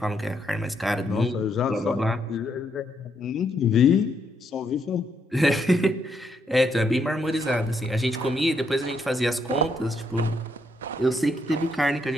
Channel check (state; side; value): normal; both; correlation 0.76